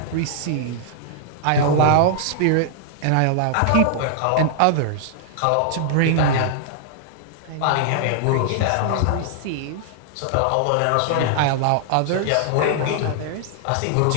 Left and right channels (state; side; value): different; both; correlation -0.01